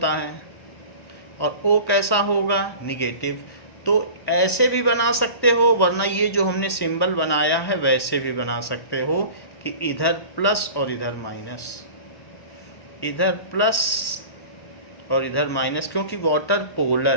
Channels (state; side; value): late; right; 1.1 ms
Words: है और O कैसा होगा? निगेटिव। तो ऐसे भी बना सकते हो, वरना ये जो हमने सिंबल बनाया है वैसे भी बना सकते हो कि इधर प्लस और इधर माइनस, इधर प्लस और इधर माइनस, क्योंकि वाटर पोलर